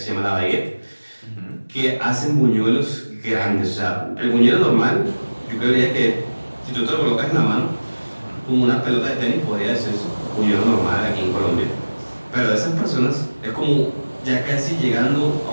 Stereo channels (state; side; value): inverted; both; correlation -1.00